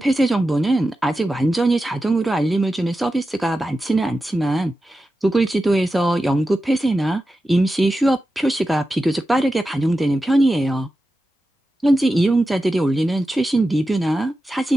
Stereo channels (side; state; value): both; normal; correlation 0.92